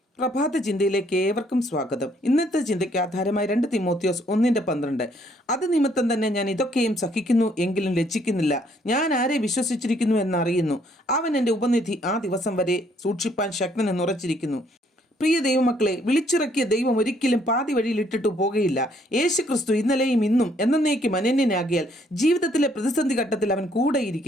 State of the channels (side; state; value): both; normal; correlation 0.67